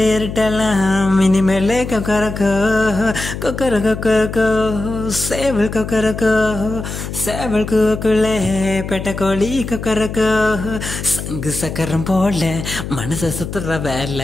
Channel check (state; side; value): noise; left; hum, 7 dB below the sound